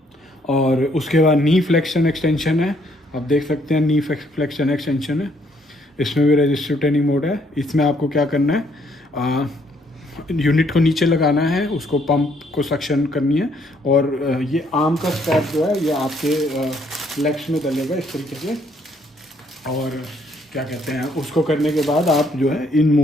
और उसके बाद नी फ्लेक्शन एक्सटेंशन है, आप देख सकते हैं नी फ्लेक्शन एक्सटेंशन है। इसमें भी रेजिस्टिव ट्रेनिंग मोड है। इसमें आपको क्या करना है, यूनिट को नीचे लगाना है, उसको पंप को सक्शन करनी है और ये आर्म का स्ट्रैप जो है ये आपके लेग्स में डलेगा इस तरीके से। और क्या कहते हैं उसको करने के बाद आप जो है इन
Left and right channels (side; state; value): both; normal; correlation 0.68